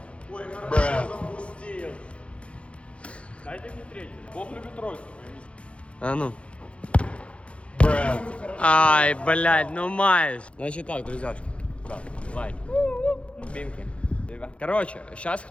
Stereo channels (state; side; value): late; right; 0.060 ms